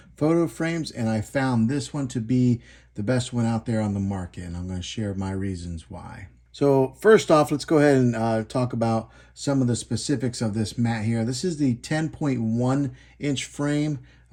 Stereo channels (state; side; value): identical; both; correlation 1.00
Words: photo frames, and I found this one to be the best one out there on the market, and I'm going to share my reasons why. So first off, let's go ahead and talk about some of the specifics of this mat here. This is the 10.1 inch frame.